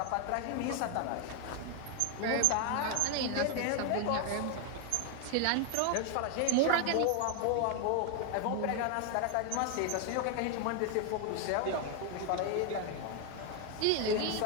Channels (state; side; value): different; both; correlation 0.00